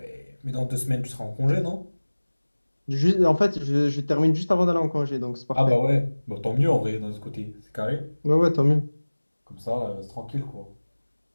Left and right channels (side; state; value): both; inverted; correlation -1.00